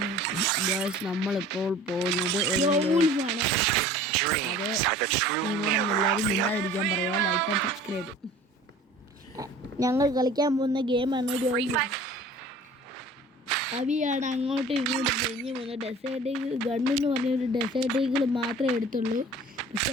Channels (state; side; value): normal; both; correlation 0.46